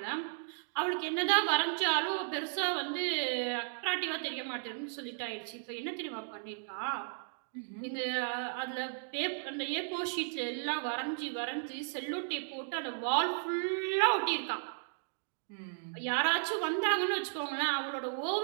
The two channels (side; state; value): left; silent; digital silence